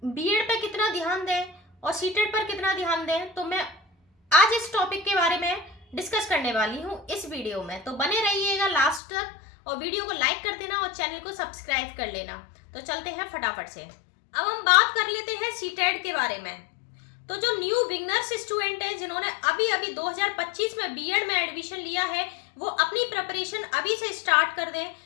बीएड पे कितना ध्यान दें और सीटेट पर कितना ध्यान दें। तो मैं आज इस टॉपिक के बारे में डिस्कस करने वाली हूँ इस वीडियो में, तो बने रहिएगा लास्ट तक और वीडियो को लाइक कर देना और चैनल को सब्सक्राइब कर लेना। तो चलते हैं फटाफट से। अब हम बात कर लेते हैं सीटेट के बारे में। तो जो न्यू बिगनर्स स्टूडेंट है जिन्होंने अभी 2025 में बीएड में एडमिशन लिया है, वो अपनी प्रिपरेशन अभी से स्टार्ट कर दें,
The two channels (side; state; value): right; drops out; at 9.0 s